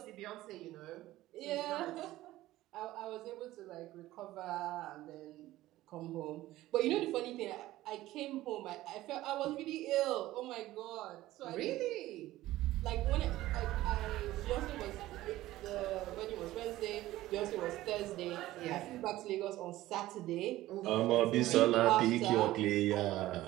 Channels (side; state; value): left; quieter; 16.0 dB